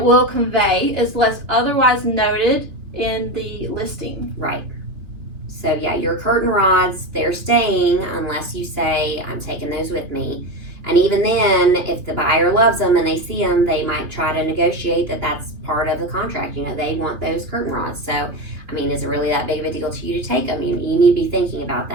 convey unless otherwise noted in the listing. Right. So yeah, your curtain rods, they're staying unless you say, I'm taking those with me. And even then, if the buyer loves them and they see them, they might try to negotiate that that's part of the contract. You know, they want those curtain rods. So, I mean, is it really that big of a deal to you to take them? You need to be thinking about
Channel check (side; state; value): left; late; 3.0 ms